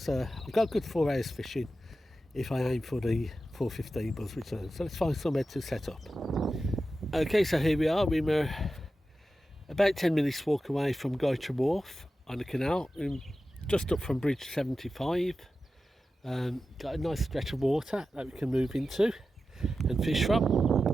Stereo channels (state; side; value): normal; both; correlation 0.92